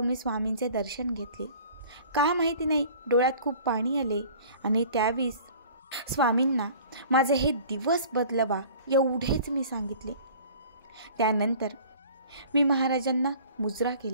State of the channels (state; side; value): inverted; both; correlation -0.47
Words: मी स्वामींचे दर्शन घेतले. का माहिती नाही, डोळ्यात खूप पाणी आले आणि त्यावेळेस स्वामींना माझे हे दिवस बदलवा एवढेच मी सांगितले. त्यानंतर मी महाराजांना मुजरा